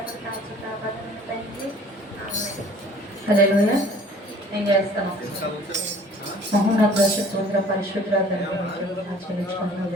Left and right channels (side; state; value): both; normal; correlation 0.51